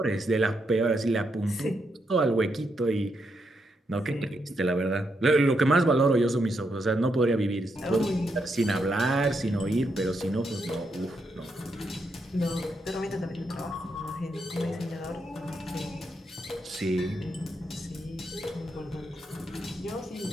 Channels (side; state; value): both; normal; correlation 0.80